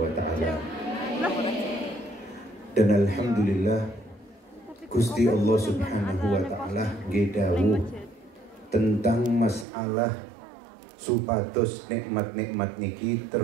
wa taala. Dan alhamdulillah Gusti Allah Subhanahu wa taala gedawuh tentang masalah supados nikmat-nikmat niki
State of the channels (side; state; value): left; drops out; at 9.7 s